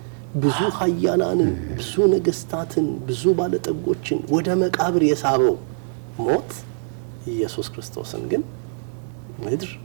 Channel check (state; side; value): silent; left; 55 dB below the other